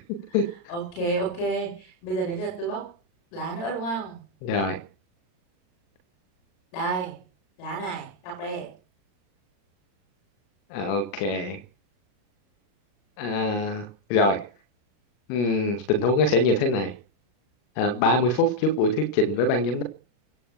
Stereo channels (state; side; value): late; right; 38 ms